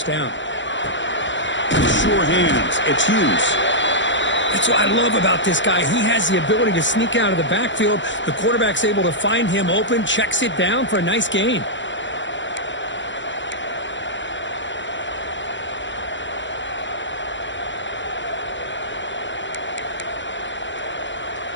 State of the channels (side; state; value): right; late; 0.54 ms